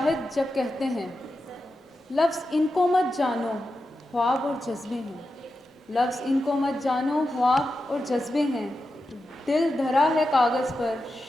جب کہتے ہیں لفظ ان کو مت جانو خواب اور جذبے ہیں، لفظ ان کو مت جانو خواب اور جذبے ہیں، دل دھرا ہے کاغذ پر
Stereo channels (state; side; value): normal; both; correlation 0.90